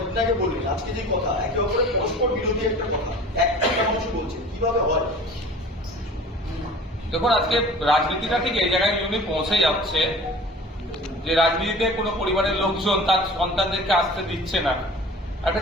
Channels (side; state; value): both; normal; correlation 0.42